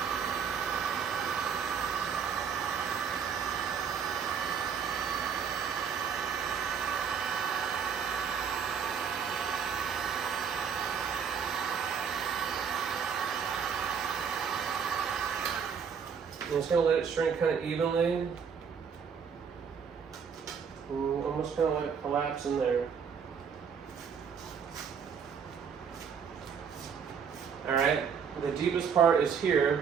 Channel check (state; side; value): quieter; left; 6.8 dB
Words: I'm just going to let it shrink kind of evenly. Almost kind of let it collapse in there. Alright, the deepest part is